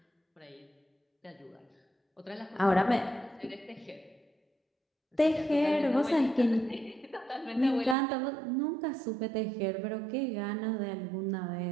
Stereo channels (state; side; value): drops out; left; at 8.0 s